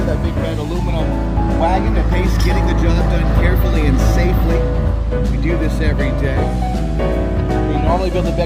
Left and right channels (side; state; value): both; identical; correlation 1.00